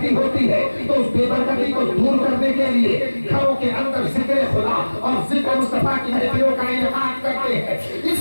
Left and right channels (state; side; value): inverted; both; correlation -1.00